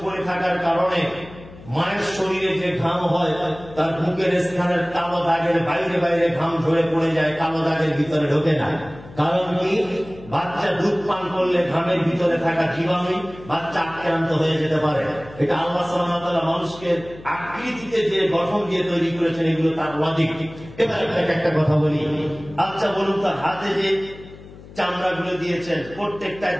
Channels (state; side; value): noise; left; hum, 18 dB below the sound